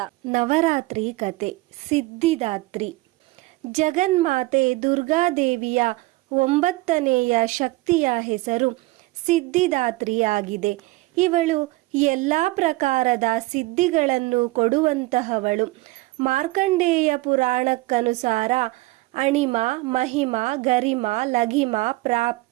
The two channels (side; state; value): left; quieter; 21.3 dB